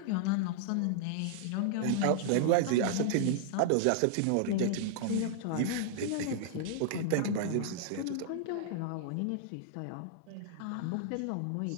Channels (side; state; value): both; different; correlation -0.01